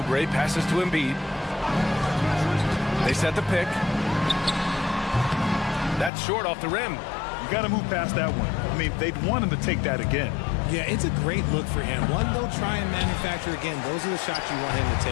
passes to Embiid. They set the pick. That's short off the rim. You got to move past that one. I mean, they'd want him to take that again. Yeah, it's a great look for him. One they'll try and manufacture again. Those are the shots you want him to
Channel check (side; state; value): right; drops out; at 6.1 s